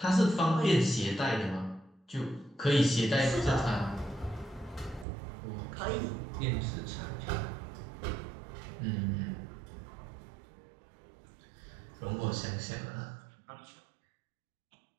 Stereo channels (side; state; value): left; drops out; at 5.1 s